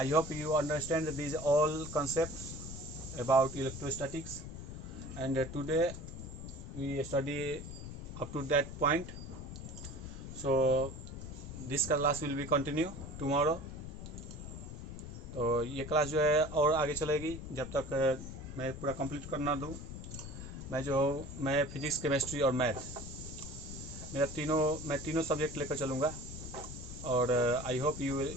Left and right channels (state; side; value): noise; left; rumble, 9 dB below the sound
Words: hope you understand this all concepts about electrostatics, and today we study up to that point. So this class will be continue tomorrow. तो ये क्लास जो है और आगे चलेगी जब तक मैं पूरा कंप्लीट करना दूँ। मैं फिजिक्स, केमिस्ट्री और मैथ, मैं तीनों सब्जेक्ट लेकर चलूँगा और I hope you will